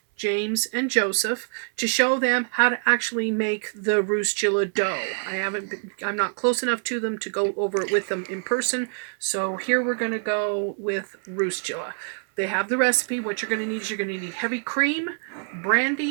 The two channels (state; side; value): silent; left; 62 dB below the other